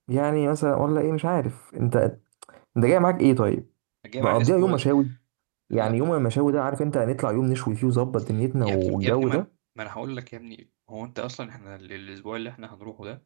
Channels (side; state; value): left; silent; digital silence